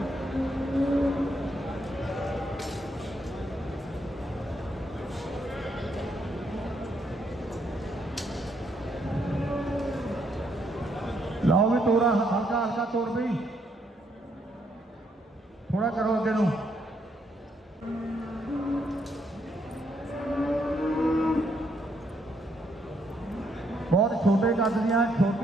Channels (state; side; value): normal; both; correlation 0.74